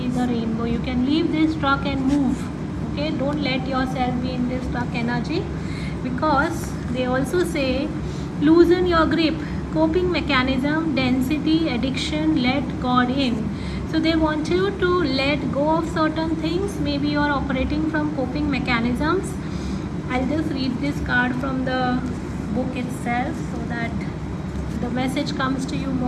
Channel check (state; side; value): identical; both; correlation 1.00